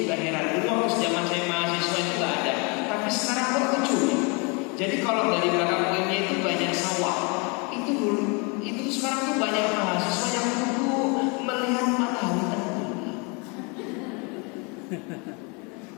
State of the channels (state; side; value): quieter; right; 31.6 dB